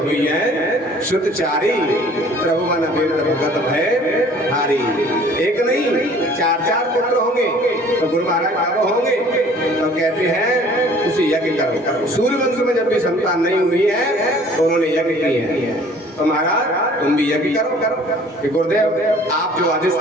है शुद्धचारी, प्रभु मन भगत भय हारी। एक नहीं 4 पुत्र होंगे। तो गुरु महाराज कब होंगे? तो कहते हैं उसे यज्ञ करो। सूर्य वंश में जब भी संतान नहीं हुई है तो उन्होंने यज्ञ किए हैं। तो महाराज तुम भी यज्ञ करो कि गुरुदेव आप जो आदेश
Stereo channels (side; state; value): both; normal; correlation 0.52